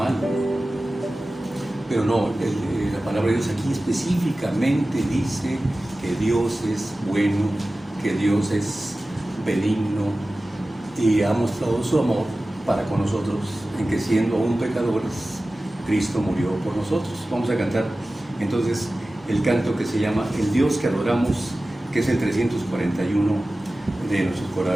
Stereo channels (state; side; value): normal; both; correlation 0.96